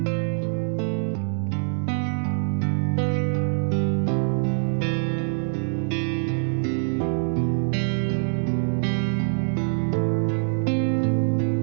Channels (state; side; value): silent; left; digital silence